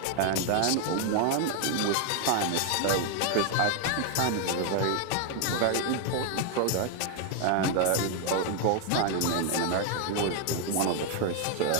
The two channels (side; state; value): both; different; correlation 0.00